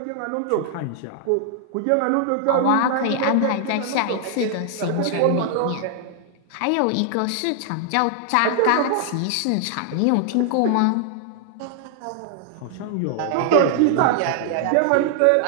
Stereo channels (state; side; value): different; both; correlation 0.00